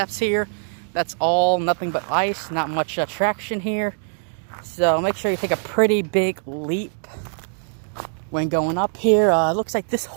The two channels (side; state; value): left; silent; 64 dB below the other